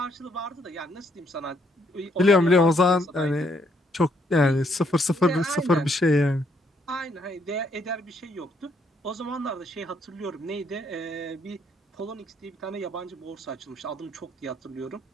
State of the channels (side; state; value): both; normal; correlation 0.71